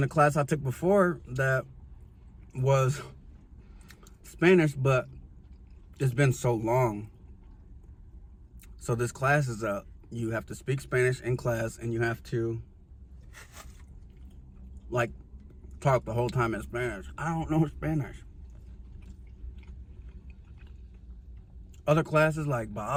the class I took before that was Spanish, but it's been so long. So this class is you have to speak Spanish in class, and you have to like talk the whole time in Spanish. I don't know Spanish. Other classes like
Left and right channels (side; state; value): both; identical; correlation 1.00